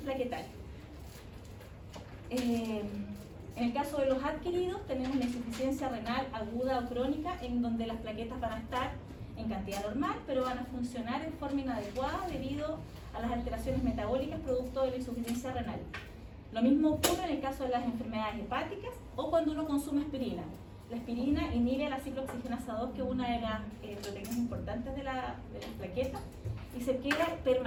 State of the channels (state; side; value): identical; both; correlation 1.00